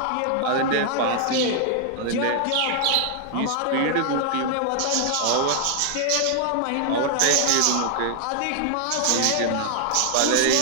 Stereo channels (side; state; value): both; different; correlation 0.00